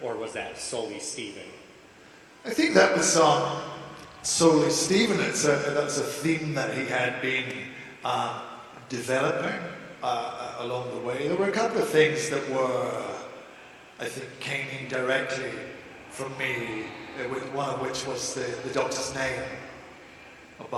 or was that solely Stephen? I think that was solely Stephen. That's a theme that he had been developing along the way. There were a couple of things that came in directly from me, one of which was the Doctor's name,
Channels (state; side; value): identical; both; correlation 1.00